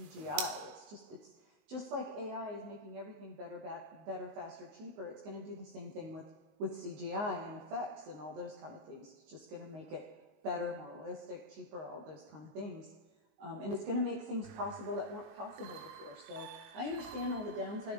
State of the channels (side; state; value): left; late; 19 ms